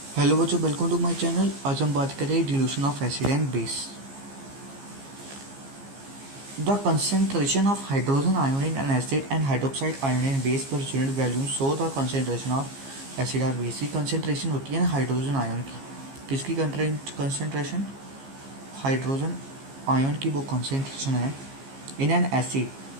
Hello बच्चों, welcome to my channel. आज हम बात करें dilution of acid and base. The concentration of hydrogen ion in an acid and hydroxide ion in base per unit value show the concentration of acid और base की concentration होती है ना hydrogen ion की। किसकी कंसेंट्रेशन? हाइड्रोजन आयन की वो concentration है इन एन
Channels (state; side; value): late; left; 15 ms